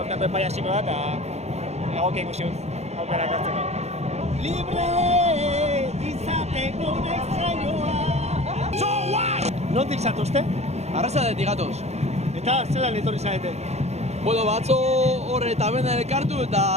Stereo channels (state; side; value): late; left; 0.31 ms